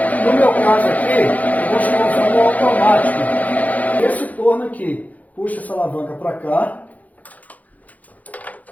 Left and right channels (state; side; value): late; right; 0.076 ms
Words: No meu caso aqui, eu vou estar usando o automático. Esse torno aqui, puxa essa alavanca para cá